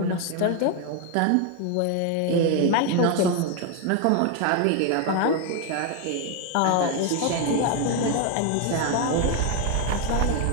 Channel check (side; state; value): both; different; correlation 0.01